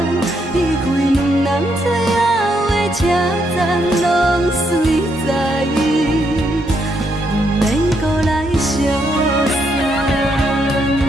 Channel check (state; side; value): normal; both; correlation 0.77